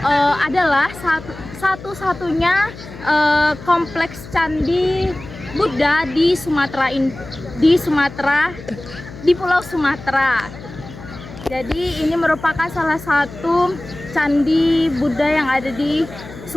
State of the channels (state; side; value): noise; left; hum, 15 dB below the sound